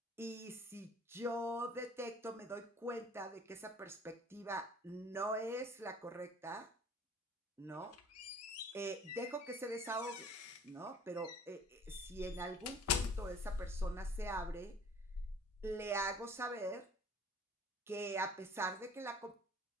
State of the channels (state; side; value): normal; both; correlation 0.51